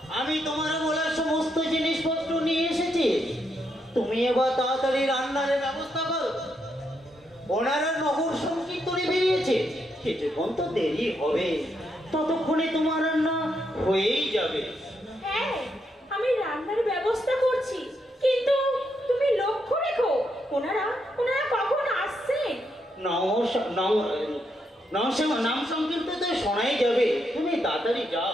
আমি তোমার বলা সমস্ত জিনিসপত্র নিয়ে এসেছি। তুমি এবার তাড়াতাড়ি রান্নার ব্যবস্থা করো। ওনারা নগর সংকীর্তনে বেরিয়েছে, কিছুক্ষণ তো দেরি হবে, ততক্ষণে তোমার রান্না হয়েই যাবে। হ্যাঁ, আমি রান্নার ব্যবস্থা করছি, কিন্তু তুমি লক্ষ্য রেখো ওনারা কখন আসছেন। নাম সংকীর্তন তো শোনাই যাবে, তুমি তাড়াতাড়ি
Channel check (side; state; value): both; normal; correlation 0.79